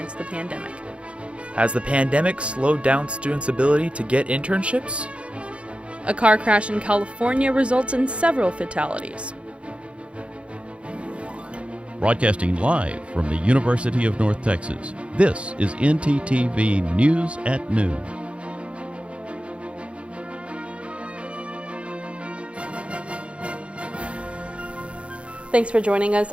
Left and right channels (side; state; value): left; late; 0.060 ms